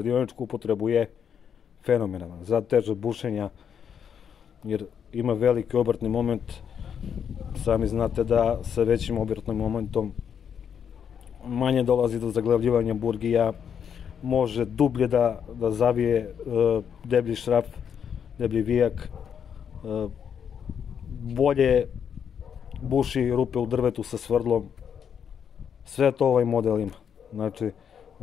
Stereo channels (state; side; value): quieter; right; 7.8 dB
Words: upotrebu je fenomenalan, za teže bušenja, jer ima veliki obrtni moment. Sami znate da sa većim obrtnim momentom manje dolazi do zaglavljivanja burgija, može dublje da zavije deblji šraf, deblji vijak, bolje buši rupe u drvetu sa svrdlom. Sve to ovaj model ima. Znači,